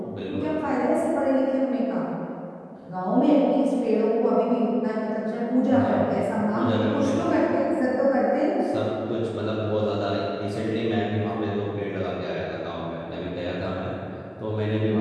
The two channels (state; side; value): identical; both; correlation 1.00